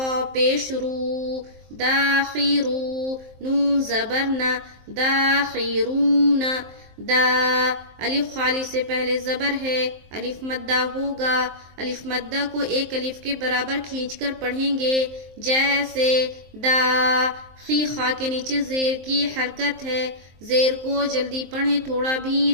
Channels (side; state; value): left; late; 23 ms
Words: پیش رو، داخرو، نون زبر نا، داخرون. دا الف خالی سے پہلے زبر ہے، الف مدہ ہوگا. الف مدہ کو ایک الف کے برابر کھینچ کر پڑھیں گے، جیسے دا. خی خا کے نیچے زیر کی حرکت ہے، زیر کو جلدی پڑھیں، تھوڑا بھی